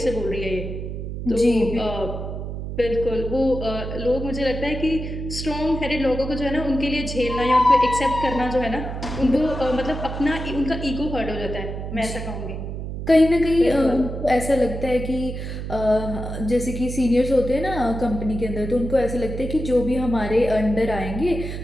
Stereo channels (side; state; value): right; noise; hum, 6 dB below the sound